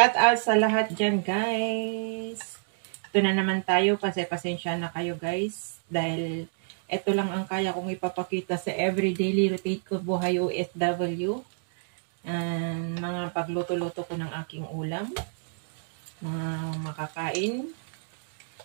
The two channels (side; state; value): left; silent; digital silence